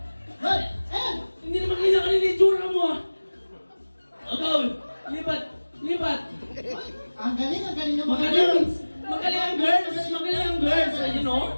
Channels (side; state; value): both; inverted; correlation -1.00